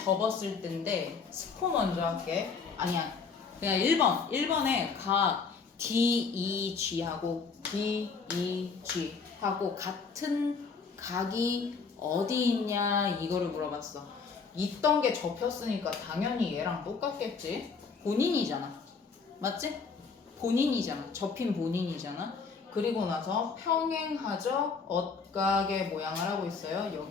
때인데 스포 먼저 할게. 아니야. 그냥 1번. 1번에 각 DEG하고 DEG하고 같은 각이 어디 있냐 이거를 물어봤어. 있던 게 접혔으니까 당연히 얘랑 똑같겠지. 본인이잖아. 맞지? 본인이잖아. 접힌 본인이잖아. 그리고 나서 평행하죠. 억각의 모양을 하고 있어요.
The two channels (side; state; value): right; quieter; 5.2 dB